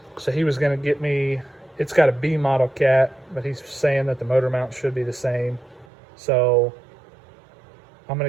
so he was going to get me it's got a B model cat, but he's saying that the motor mount should be the same. So I'm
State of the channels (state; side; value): drops out; left; at 5.9 s